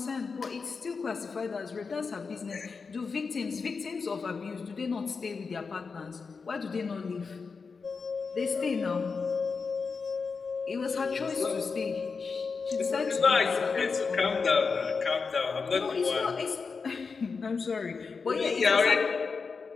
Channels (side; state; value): right; quieter; 5.0 dB